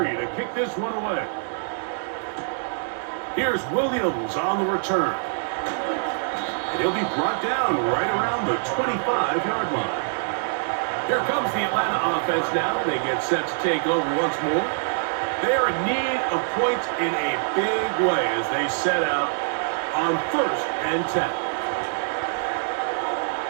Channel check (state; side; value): silent; left; digital silence